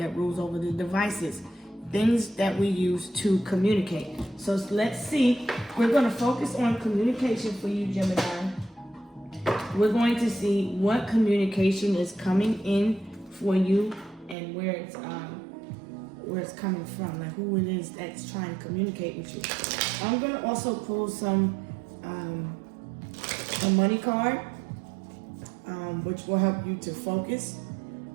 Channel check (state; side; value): drops out; left; at 14.4 s